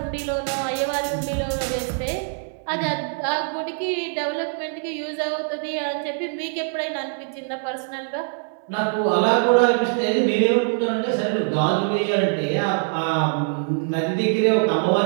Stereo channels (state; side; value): silent; left; digital silence